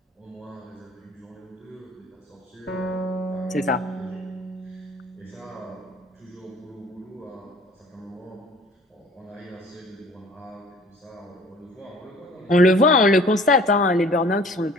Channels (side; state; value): both; normal; correlation 0.50